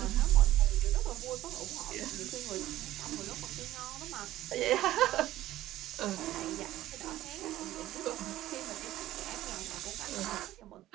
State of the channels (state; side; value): quieter; left; 14.7 dB